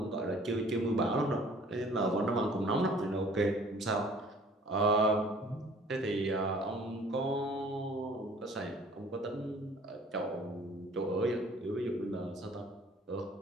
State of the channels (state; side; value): normal; both; correlation 0.53